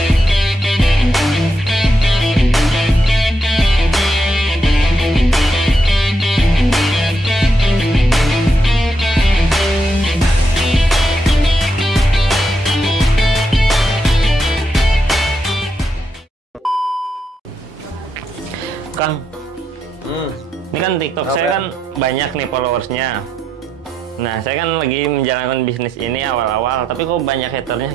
Kang, ini kan TikTok saya kan banyak nih followersnya. Nah, saya kan lagi menjalankan bisnis ini awal-awal, tapi kok banyak haternya?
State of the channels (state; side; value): normal; both; correlation 0.81